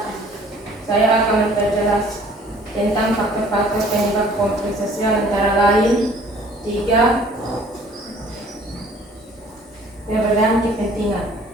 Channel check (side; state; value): both; normal; correlation 0.54